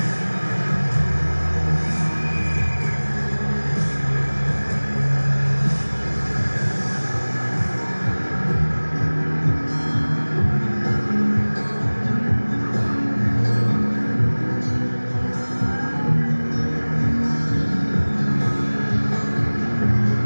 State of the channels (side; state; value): both; inverted; correlation -1.00